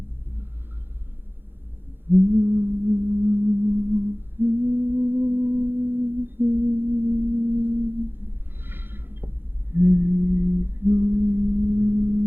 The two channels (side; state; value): left; late; 0.10 ms